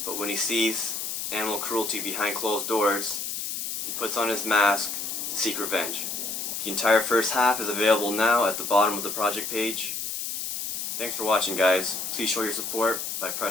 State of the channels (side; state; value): left; noise; hiss, 4 dB below the sound